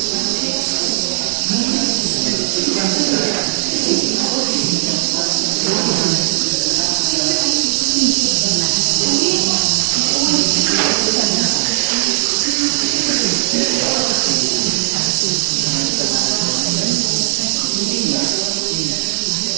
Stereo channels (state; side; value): silent; left; 68 dB below the other